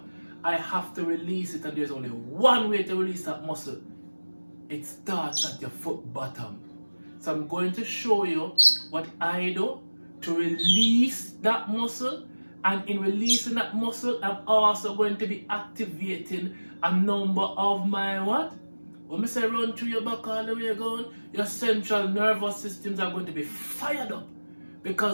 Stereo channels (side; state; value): both; inverted; correlation -1.00